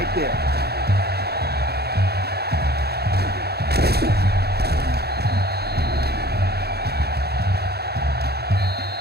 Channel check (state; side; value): late; left; 0.47 ms